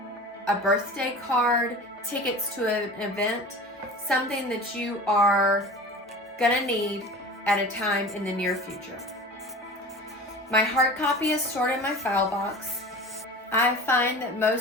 a birthday card, tickets to an event, something that you are gonna need at a time in the near future. My hard copy is stored in my file box. I find that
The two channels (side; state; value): both; normal; correlation 0.36